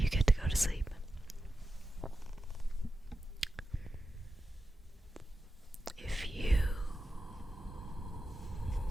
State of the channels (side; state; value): both; normal; correlation 0.91